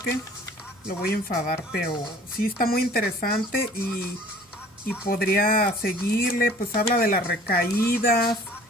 lo voy a enfadar, pero sí está muy interesante y podría seguirle, pues habla de las recaídas,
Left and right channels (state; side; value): normal; both; correlation 0.50